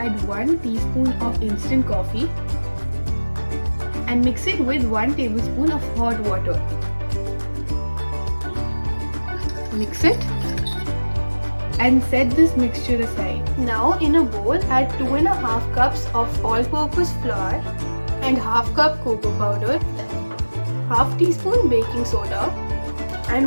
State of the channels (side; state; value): both; inverted; correlation -1.00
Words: 1 teaspoon of instant coffee and mix it with 1 tablespoon of hot water. Mix it and set this mixture aside. Now in a bowl, add 2.5 cups of all-purpose flour and half cup cocoa powder, half teaspoon baking soda